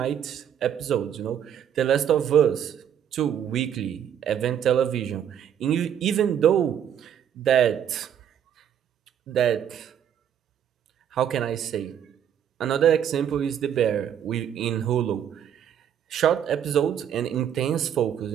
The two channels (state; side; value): quieter; left; 9.3 dB